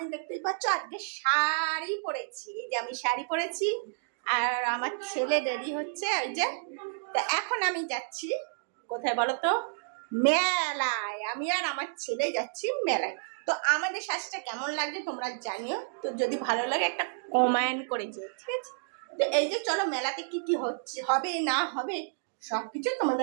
দেখতেই পাচ্ছ আজকে শাড়ি পরেছি, এই যে আমি শাড়ি পরেছি, আর আমার ছেলে রেডি হচ্ছে ওই যে। তো এখন আমি যাচ্ছি কোথায় বলো তো? মেলায়। আমি আর আমার ছেলে যাচ্ছি মেলায়। তো আমাদের সাজটা কেমন লাগছে তোমরা জানিও, তো যদি ভালো লাগে একটা কমেন্ট করে যেও, ঠিক আছে? তো এই যে চলো, মেলাতে কি কি হচ্ছে, হবে না হবে সবকিছু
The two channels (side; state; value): left; silent; digital silence